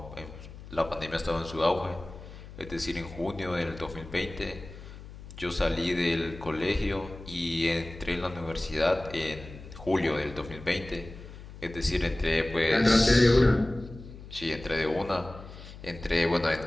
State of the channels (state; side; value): noise; left; hum, 15 dB below the sound